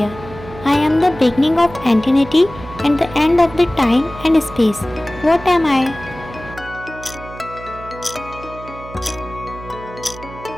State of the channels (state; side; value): noise; right; hum, 15 dB below the sound